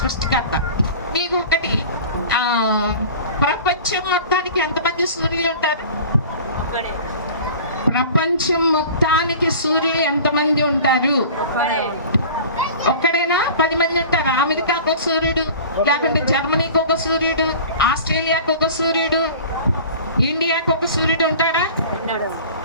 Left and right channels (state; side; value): inverted; both; correlation -0.40